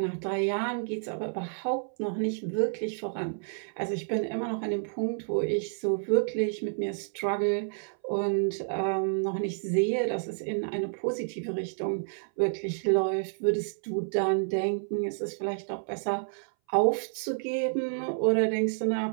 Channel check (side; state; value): left; silent; 58 dB below the other